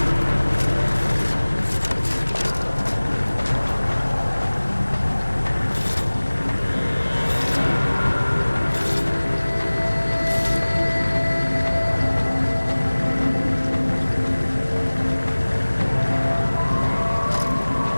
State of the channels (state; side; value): inverted; both; correlation -1.00